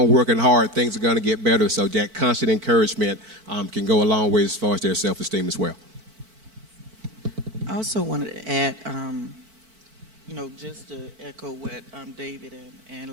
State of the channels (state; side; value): late; left; 4.5 ms